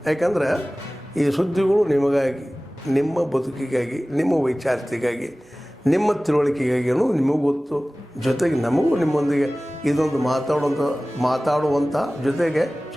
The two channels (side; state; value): both; normal; correlation 0.98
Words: ಯಾಕಂದರೆ ಈ ಸುದ್ದಿಗಳು ನಿಮಗಾಗಿ, ನಿಮ್ಮ ಬದುಕಿಗಾಗಿ, ನಿಮ್ಮ ವೈಚಾರಿಕೆಗಾಗಿ, ನಿಮ್ಮ ತಿಳುವಳಿಕೆಗಾಗಿ ಅನ್ನೋದು ನಿಮಗೂ ಗೊತ್ತು. ಜೊತೆಗೆ ನಮಗೂ ನಿಮ್ಮೊಂದಿಗೆ ಇದೊಂದು ಮಾತಾಡುವಂಥ ಜೊತೆಗೆ